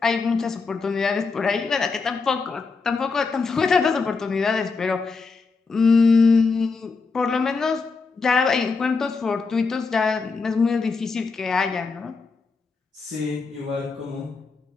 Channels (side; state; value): right; quieter; 4.5 dB